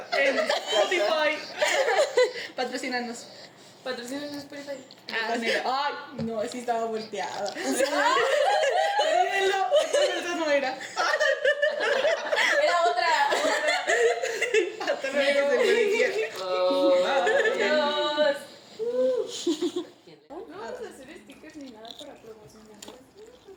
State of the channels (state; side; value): identical; both; correlation 1.00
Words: En Spotify. Patrocínanos. Patrocinan en Spotify. Ay, no, sí estaba volteada. Olvídenlo, esa no era. Era otra. Hasta luego, se Adiós. No vamos a hacer stickers ni nada para promocionarlos.